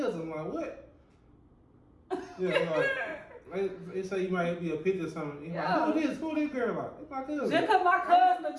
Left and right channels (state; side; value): identical; both; correlation 1.00